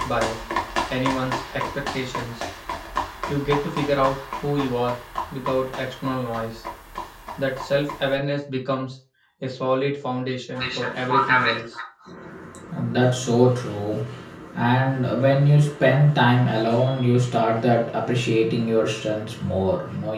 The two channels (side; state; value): both; identical; correlation 1.00